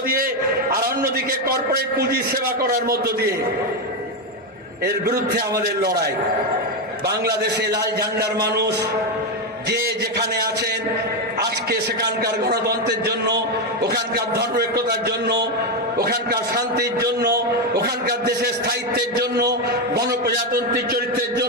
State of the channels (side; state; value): both; normal; correlation 0.08